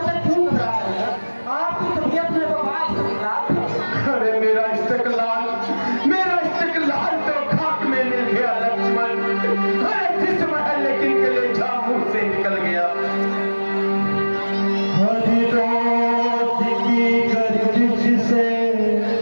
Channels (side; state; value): both; inverted; correlation -1.00